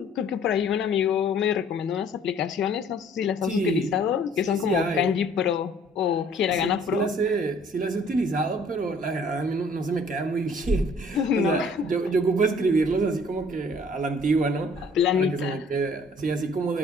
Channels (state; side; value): normal; both; correlation 0.56